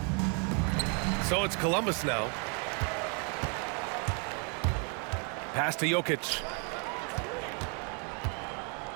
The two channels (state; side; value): quieter; left; 37.8 dB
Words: So it's Columbus now. Pass to Jokic.